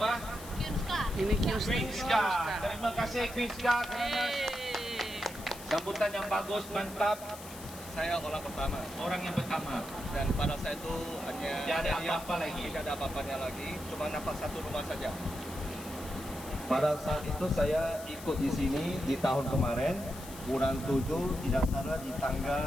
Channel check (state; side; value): noise; left; hiss, 15 dB below the sound